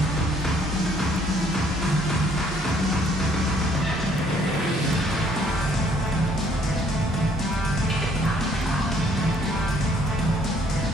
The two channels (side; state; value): both; normal; correlation 0.63